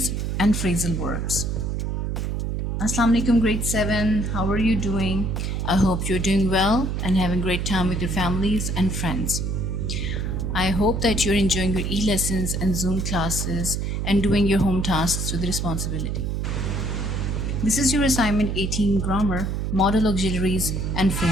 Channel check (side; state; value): right; noise; hum, 1 dB below the sound